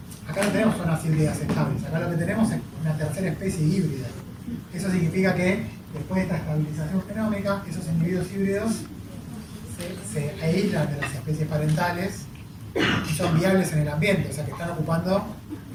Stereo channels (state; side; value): identical; both; correlation 1.00